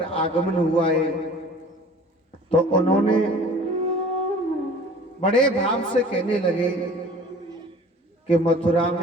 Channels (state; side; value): normal; both; correlation 0.47